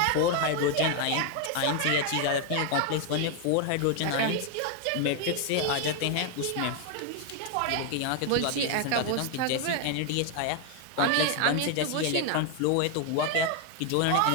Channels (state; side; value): different; both; correlation 0.01